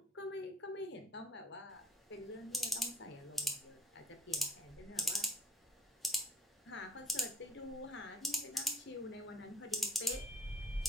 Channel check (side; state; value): both; normal; correlation 0.60